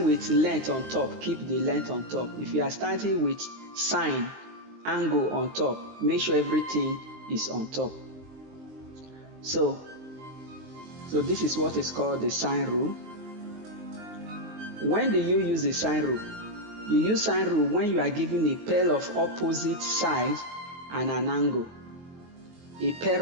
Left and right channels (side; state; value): left; late; 23 ms